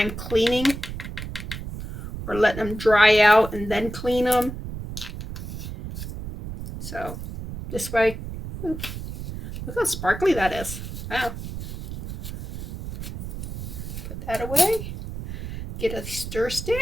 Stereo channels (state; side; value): noise; right; rumble, 8 dB below the sound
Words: cleaning or letting them dry out and then clean them. So this way, look how sparkly that is. Wow. Put that away. Get a stir